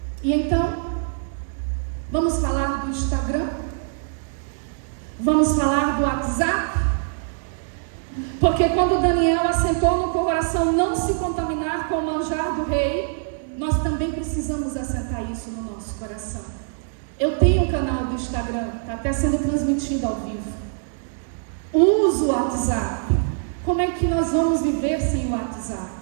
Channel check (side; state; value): left; silent; digital silence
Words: E então, vamos falar do Instagram? Vamos falar do WhatsApp? Porque quando Daniel assentou no coração não se contaminar com o manjar do rei, nós também precisamos assentar isso no nosso coração. Eu tenho um canal do Instagram, está até sendo transmitido ao vivo. Uso o WhatsApp. Como é que nós vamos viver sem o WhatsApp?